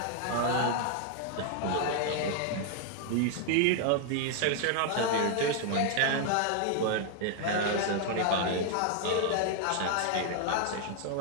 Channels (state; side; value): different; both; correlation 0.00